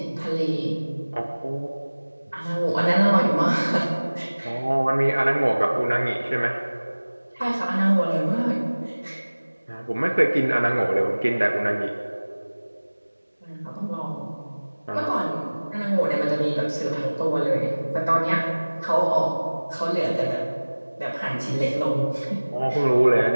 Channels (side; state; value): both; inverted; correlation -1.00